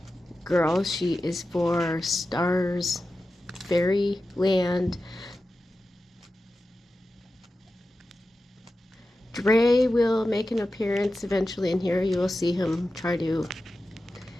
girl. She is for Stars Fairyland. Dre will make an appearance eventually in here. You will see him try to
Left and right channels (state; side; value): normal; both; correlation 0.93